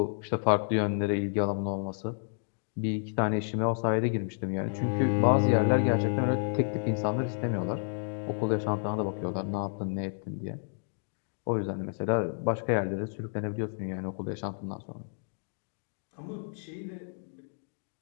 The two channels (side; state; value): right; silent; digital silence